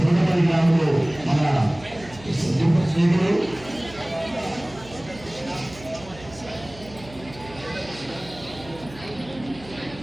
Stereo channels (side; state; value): right; noise; hum, 19 dB below the sound